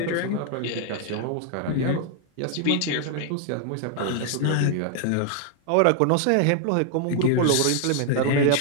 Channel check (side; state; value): both; different; correlation 0.00